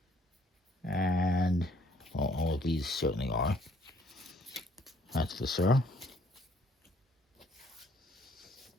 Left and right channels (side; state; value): both; normal; correlation 0.62